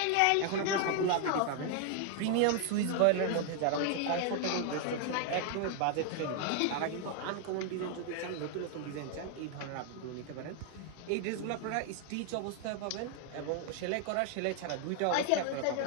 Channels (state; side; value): different; both; correlation 0.00